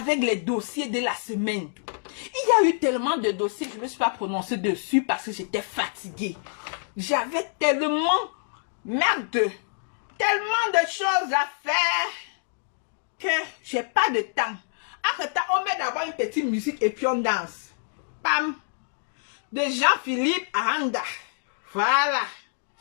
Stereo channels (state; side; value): silent; right; digital silence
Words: les dossiers de la semaine. Il y a eu tellement de dossiers, je ne me suis pas prononcée dessus parce que j'étais fatiguée. J'avais tellement... Merde, tellement de choses à faire que j'ai pas de temps. Entre temps, on met d'abord une petite musique et puis on danse. Pam. De Jean-Philippe Aranda. Voilà.